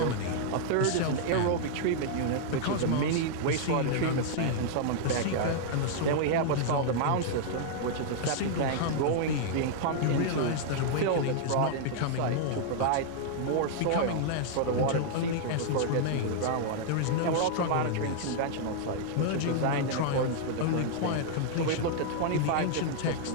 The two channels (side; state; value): both; different; correlation -0.01